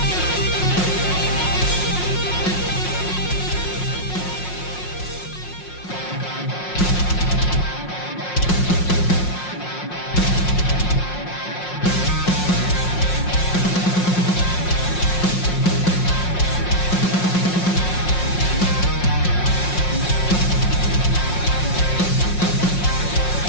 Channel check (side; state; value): right; late; 5.5 ms